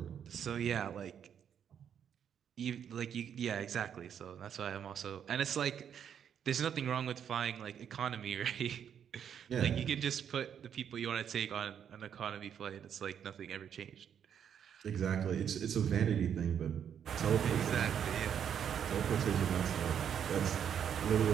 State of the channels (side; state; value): left; quieter; 8.5 dB